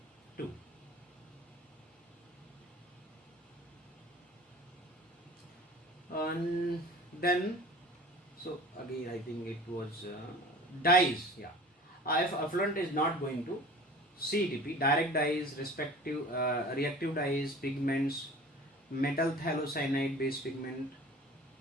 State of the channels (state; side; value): normal; both; correlation 0.42